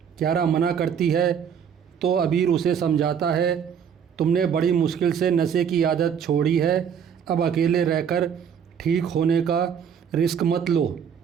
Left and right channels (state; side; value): quieter; left; 7.7 dB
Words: कियारा मना करती है तो अबीर उसे समझाता है, तुमने बड़ी मुश्किल से नशे की आदत छोड़ी है, अब अकेले रहकर ठीक होने का रिस्क मत लो,